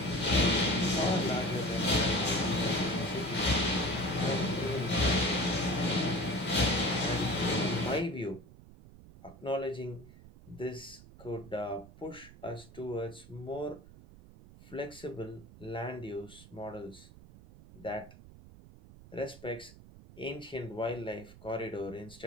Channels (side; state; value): right; noise; rumble, 20 dB below the sound